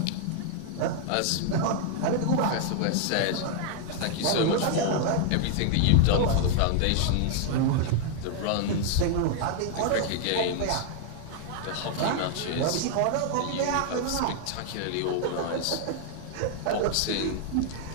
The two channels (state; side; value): different; both; correlation 0.00